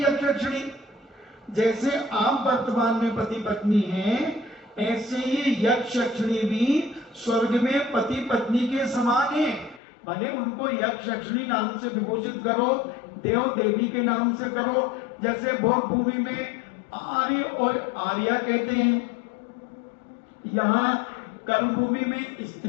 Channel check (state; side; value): drops out; right; at 9.8 s